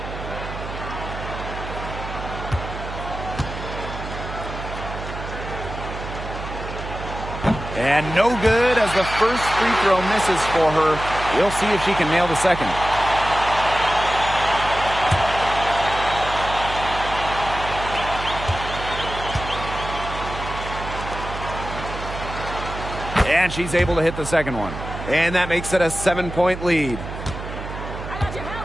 And no good as the first free throw misses for her. We'll see if she can nail the second. And she's able to hit the second one. And that makes it a 7-point lead.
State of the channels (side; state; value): right; noise; hum, 9 dB below the sound